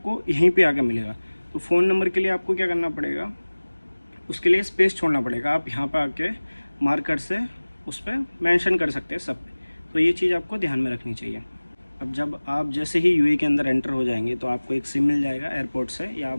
यहीं पे आके मिलेगा। तो फ़ोन नंबर के लिए आपको क्या करना पड़ेगा, उसके लिए स्पेस छोड़ना पड़ेगा। आप यहाँ पर आके मार्कर से उस पर मेंशन कर सकते हैं सब पे। तो ये चीज़ आपको ध्यान में रखनी चाहिए। अब जब आप जैसे ही यूएई के अंदर एंटर हो जाएंगे तो आपको एक सिम मिल जाएगा एयरपोर्ट से, या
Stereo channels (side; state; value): both; inverted; correlation -1.00